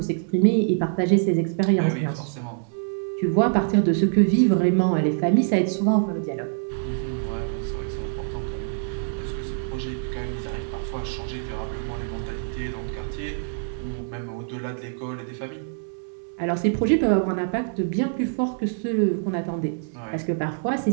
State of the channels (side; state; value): left; silent; digital silence